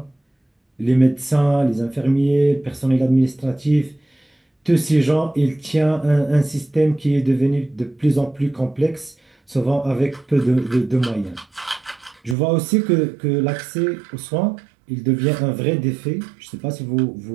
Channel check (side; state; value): left; drops out; at 12.4 s